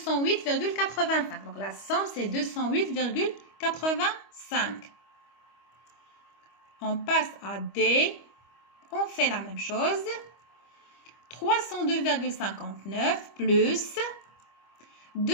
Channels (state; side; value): late; right; 25 ms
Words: Donc, la somme, c'est 208,85. On passe à D. On fait la même chose. 302,59 plus